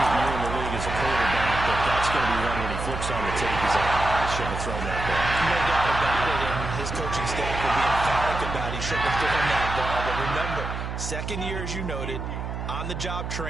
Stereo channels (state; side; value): noise; right; hum, 5 dB below the sound